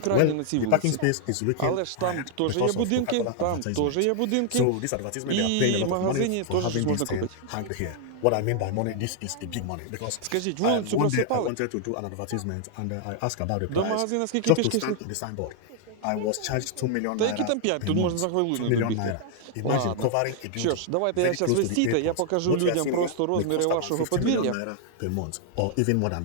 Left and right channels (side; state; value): both; different; correlation 0.00